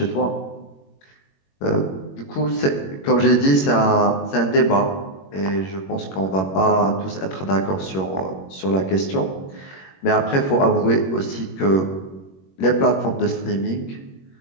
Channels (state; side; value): late; right; 21 ms